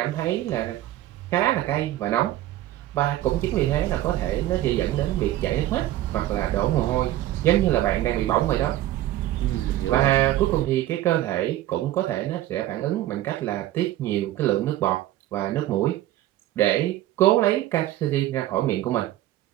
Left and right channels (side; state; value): left; quieter; 14.3 dB